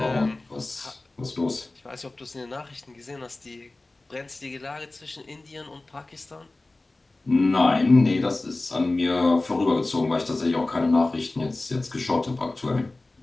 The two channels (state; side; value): quieter; right; 3.0 dB